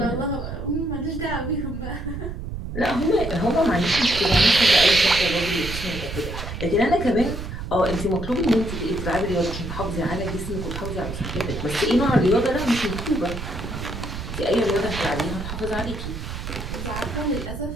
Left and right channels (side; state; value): right; noise; rumble, 7 dB below the sound